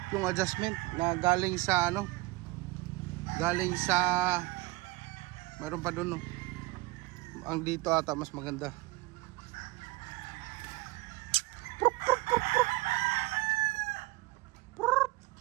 yung adjustment na galing sa mayroon pa doon, no? Ang dito ata mas maganda.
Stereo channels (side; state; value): left; quieter; 21.6 dB